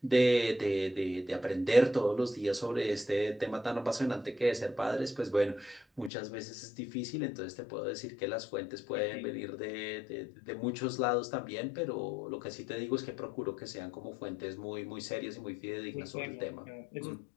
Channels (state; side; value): drops out; right; at 6.1 s